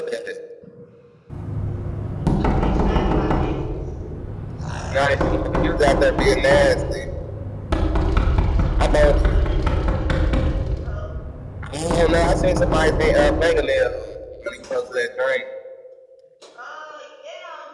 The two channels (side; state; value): both; identical; correlation 1.00